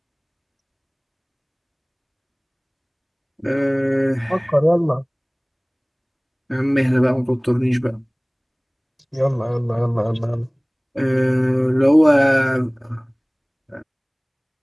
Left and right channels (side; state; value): both; identical; correlation 1.00